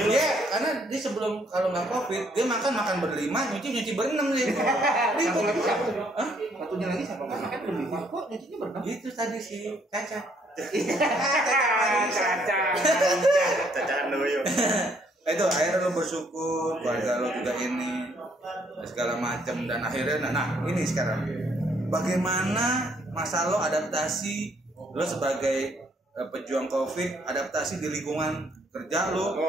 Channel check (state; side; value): normal; both; correlation 0.67